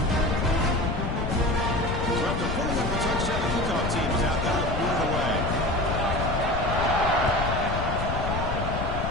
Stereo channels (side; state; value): left; noise; rumble, 2 dB below the sound